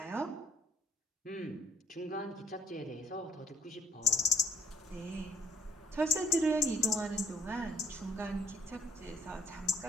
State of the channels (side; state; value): both; normal; correlation 0.62